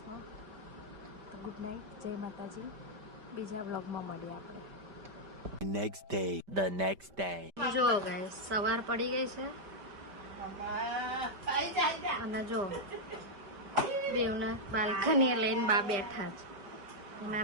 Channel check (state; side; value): late; left; 5.1 ms